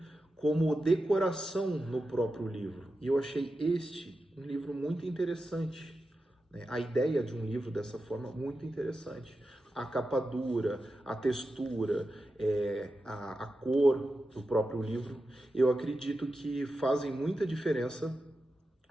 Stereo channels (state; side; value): normal; both; correlation 0.91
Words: como decoração no próprio livro. E eu achei um livro muito interessante, né? A ideia de um livro dessa forma, muito interessante. A capa dura, a textura, a cor do próprio livro, eu acredito que fazem muita diferença